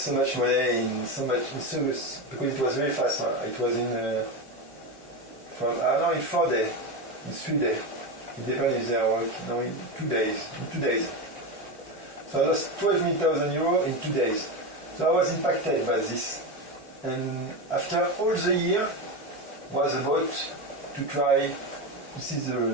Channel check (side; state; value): both; normal; correlation 0.17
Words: much money in service? Because it was very fast. It was in 4 days, in 3 days. It depends if they are working. No, in 2 days. So I lost 12,000 euro in 2 days. So I was impacted by this. And after all the year was about to try to see the